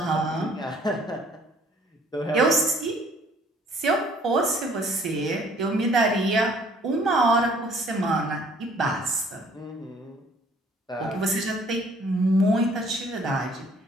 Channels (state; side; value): normal; both; correlation 0.58